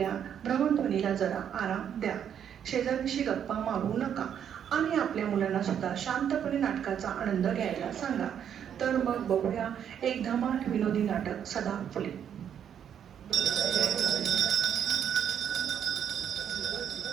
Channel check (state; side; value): quieter; left; 8.8 dB